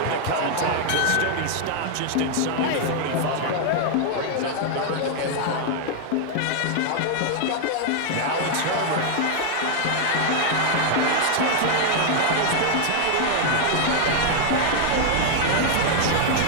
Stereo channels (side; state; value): both; different; correlation 0.00